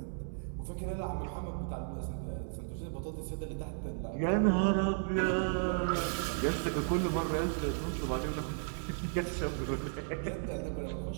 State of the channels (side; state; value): left; silent; 55 dB below the other